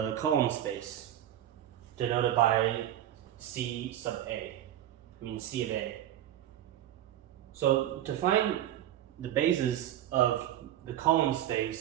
column space, denoted by C sub A, C of A. So to find the bases of the column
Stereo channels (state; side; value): quieter; left; 12.0 dB